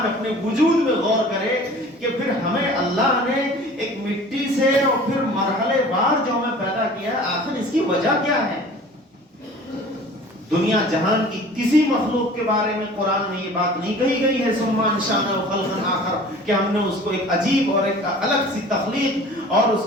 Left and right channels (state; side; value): normal; both; correlation 0.45